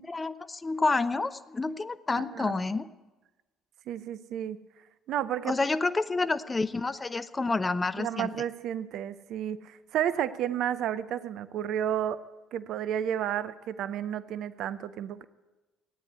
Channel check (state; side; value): normal; both; correlation 0.72